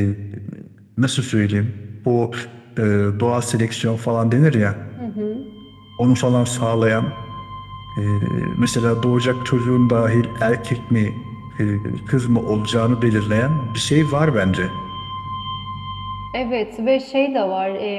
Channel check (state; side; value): identical; both; correlation 1.00